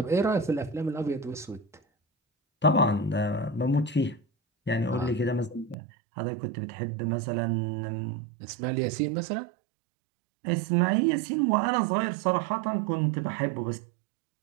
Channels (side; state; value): left; drops out; at 5.8 s